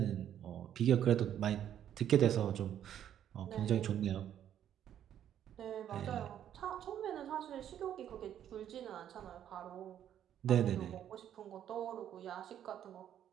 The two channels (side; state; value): left; quieter; 10.3 dB